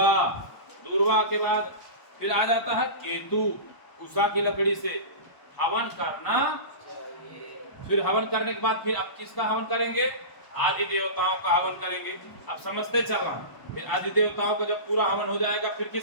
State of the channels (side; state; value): right; late; 1.0 ms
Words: दूर्वा के बाद फिर आ जाता है केतु, उषा की लकड़ी से हवन करना। फिर हवन करने के बाद फिर अब किसका हवन करेंगे? आदि देवताओं का हवन करेंगे। अब समझते चलना। फिर आदि देवताओं का जब पूरा हवन हो जाएगा फिर